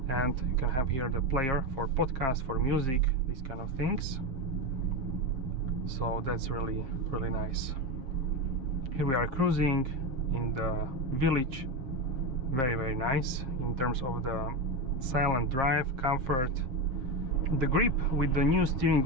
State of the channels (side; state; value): left; late; 7.7 ms